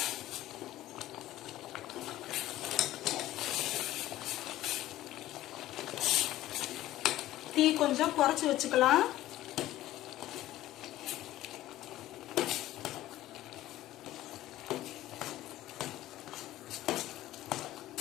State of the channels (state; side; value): quieter; right; 15.0 dB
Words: தீ கொஞ்சம் குறைச்சி வச்சுக்கலாம்.